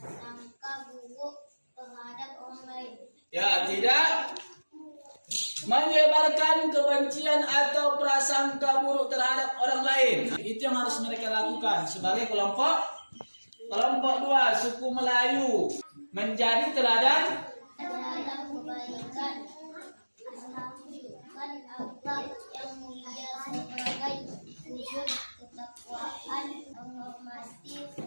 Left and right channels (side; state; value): both; inverted; correlation -1.00